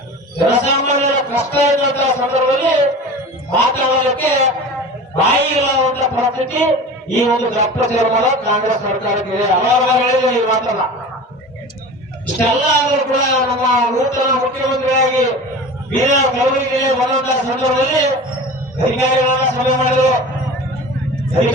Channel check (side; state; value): both; normal; correlation 0.35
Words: ಜನಸಾಮಾನ್ಯರ ಕಷ್ಟ ಇದ್ದಂತಹ ಸಂದರ್ಭದಲ್ಲಿ ಮಾತನಾಡಲಿಕ್ಕೆ ಬಾಯಿ ಇಲ್ಲವಂತ ಪರಿಸ್ಥಿತಿ ಈ ಒಂದು ದಪ್ಪ ತೀರ್ಮಾನ ಕಾಂಗ್ರೆಸ್ ಸರ್ಕಾರಕ್ಕೆ ಇದೆ. ಅವಾಗ ಹೇಳಿದ್ರೆ ಈ ಮಾತಲ್ಲ. ಇಷ್ಟೆಲ್ಲ ಆದರೂ ಕೂಡ ನಮ್ಮ ನೂತನ ಮುಖ್ಯಮಂತ್ರಿಯಾಗಿ ಬೀದರ್ ಕಲಬುರಗಿಗೆ ಬರುವಂತಹ ಸಂದರ್ಭದಲ್ಲಿ ಅಧಿಕಾರಿಗಳನ್ನ ಸಭೆ ಮಾಡಿದ್ರು.